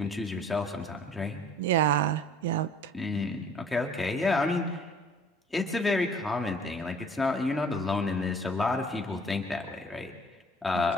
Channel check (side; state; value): both; normal; correlation 0.52